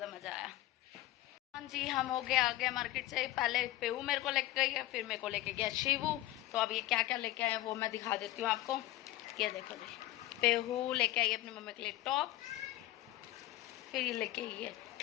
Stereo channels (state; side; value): quieter; right; 16.2 dB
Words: मजा आया। हाँ जी, हम हो गए आ गए मार्केट से। पहले पेऊ मेरे को लेके गई है, फिर मेरे को लेके गया शिवू। तो अब ये क्या क्या लेके आए वो मैं दिखा देती हूँ आपको। ये देखो जी, पेहू लेके आई अपनी मम्मी के लिए टॉप, फिर ये लेके आई है